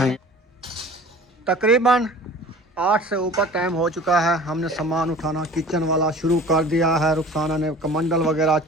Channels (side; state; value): both; normal; correlation 0.44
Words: तकरीबन 8 से ऊपर टाइम हो चुका है। हमने सामान उठाना किचन वाला शुरू कर दिया है। रुखसाना ने कमंडल वगैरह,